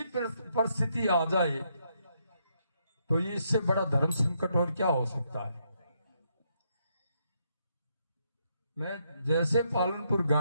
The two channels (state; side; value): inverted; both; correlation -0.76